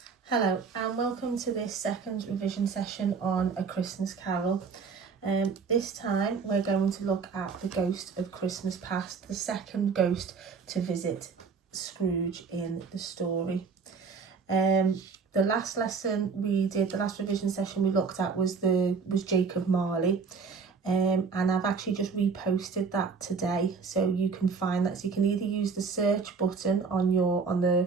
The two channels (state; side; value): quieter; left; 5.3 dB